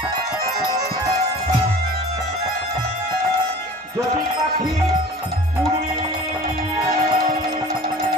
যদি পাখি উড়ে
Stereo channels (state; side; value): normal; both; correlation 0.42